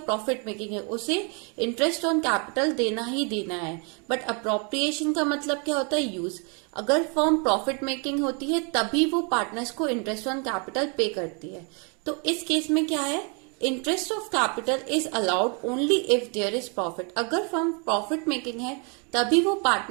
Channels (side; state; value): left; quieter; 35.7 dB